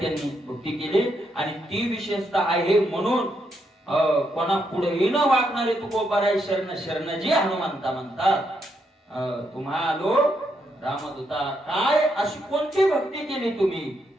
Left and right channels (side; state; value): both; normal; correlation 0.79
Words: भक्ती केली आणि ती विशेषता आहे म्हणून कोणा पुढे न वागणारे तुकोबाराय शरण शरण जी हनुमंता म्हणतात. तुम्हालो रामदूता, काय अशी कोणती भक्ती केली तुम्ही?